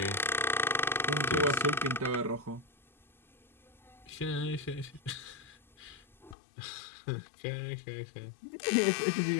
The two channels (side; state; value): right; drops out; at 6.4 s